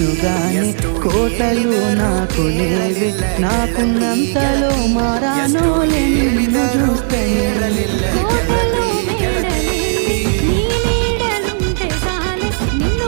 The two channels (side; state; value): left; silent; digital silence